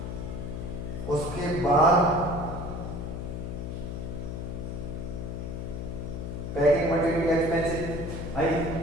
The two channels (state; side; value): noise; left; hum, 5 dB below the sound